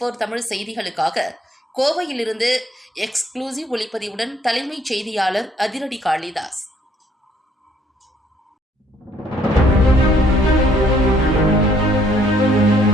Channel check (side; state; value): both; normal; correlation 0.65